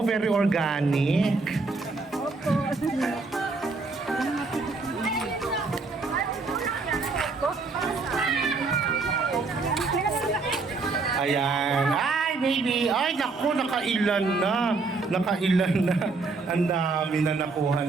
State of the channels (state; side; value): quieter; left; 4.0 dB